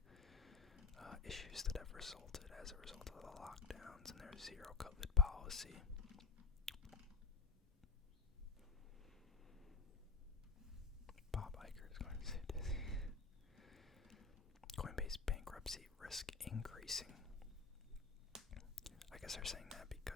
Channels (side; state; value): right; quieter; 5.2 dB